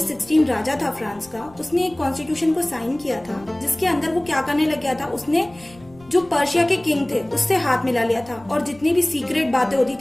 16 राजा था फ्रांस का, उसने एक कॉन्स्टिट्यूशन को साइन किया था जिसके अंदर वो क्या करने लग गया था, उसने जो पर्शिया के किंग थे उससे हाथ मिला लिया था और जितनी भी सीक्रेट बातें होती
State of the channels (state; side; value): noise; left; rumble, 25 dB below the sound